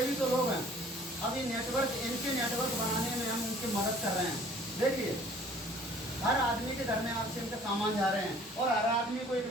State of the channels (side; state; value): both; normal; correlation 0.53